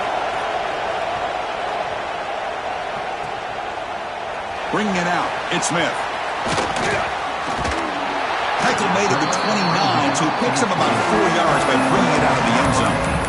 Bringing it out, it's Smith. Tackle made at the 29, so he picks up about 4 yards by bringing it out of the end zone.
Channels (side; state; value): both; identical; correlation 1.00